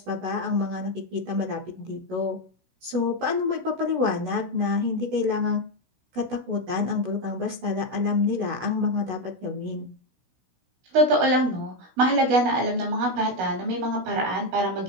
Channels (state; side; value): late; left; 16 ms